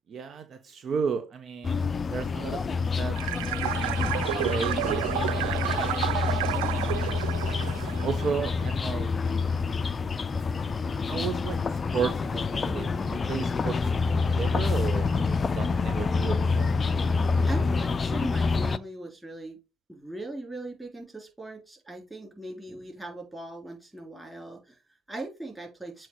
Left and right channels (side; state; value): both; normal; correlation 0.75